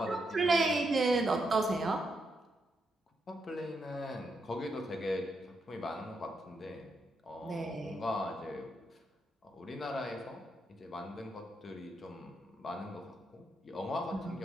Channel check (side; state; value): both; normal; correlation 0.81